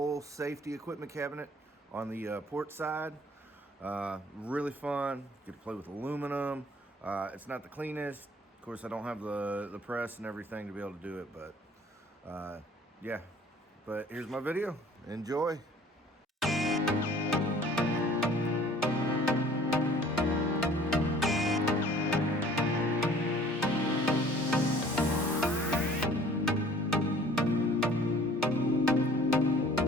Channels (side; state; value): both; normal; correlation 0.53